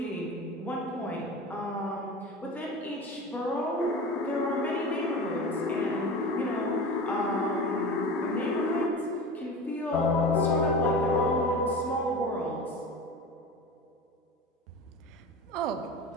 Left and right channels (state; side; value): normal; both; correlation 0.31